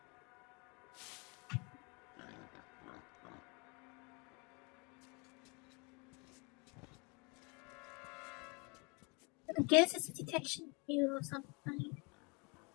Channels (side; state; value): right; quieter; 31.3 dB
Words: I guess it's a detection cue of something.